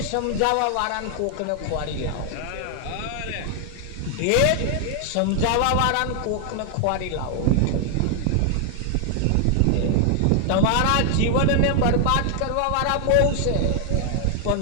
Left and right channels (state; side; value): different; both; correlation 0.00